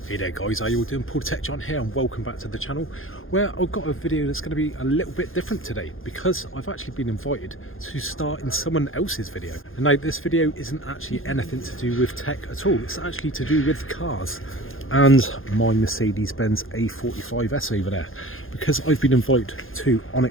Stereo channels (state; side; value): late; right; 0.60 ms